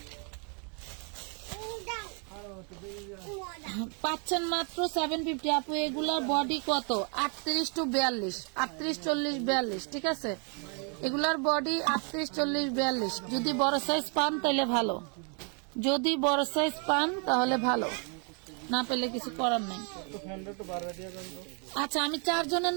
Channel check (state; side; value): quieter; left; 38.7 dB